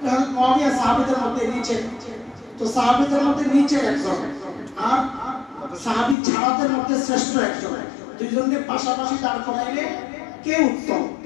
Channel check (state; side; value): drops out; right; at 6.2 s